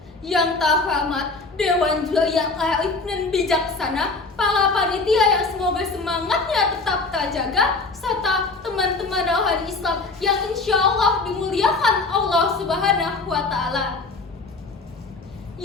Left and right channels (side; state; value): right; quieter; 3.7 dB